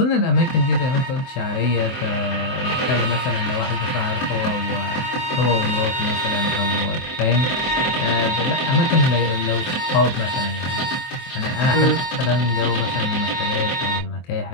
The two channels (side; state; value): right; late; 23 ms